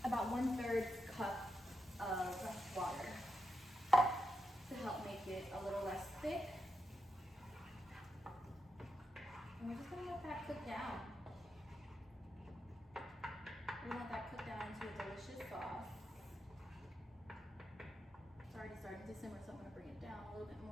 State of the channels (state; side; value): normal; both; correlation 0.86